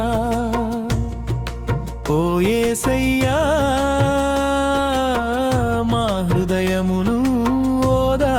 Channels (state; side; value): identical; both; correlation 1.00